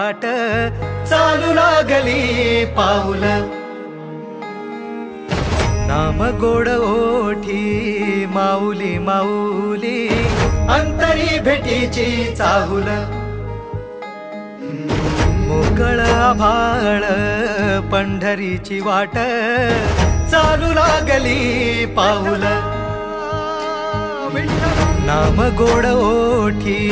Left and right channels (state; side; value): identical; both; correlation 1.00